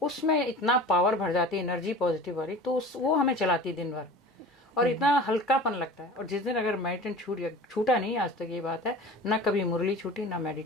उसमें इतना पावर भर जाती है, एनर्जी पॉजिटिव वाली, तो वो हमें चलाती है दिन भर, और इतना हल्कापन लगता है। और जिस दिन अगर मेडिटेशन छूटा नहीं, आज तक ये बात है, ना कभी मुरली छूटी ना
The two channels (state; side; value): normal; both; correlation 0.39